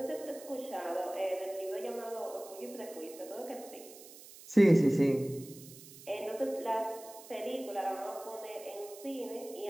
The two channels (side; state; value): right; noise; hiss, 17 dB below the sound